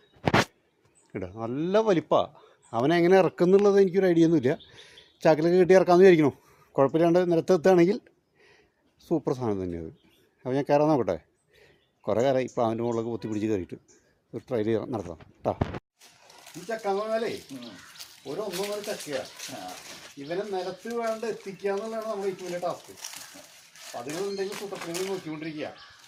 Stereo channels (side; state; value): both; identical; correlation 1.00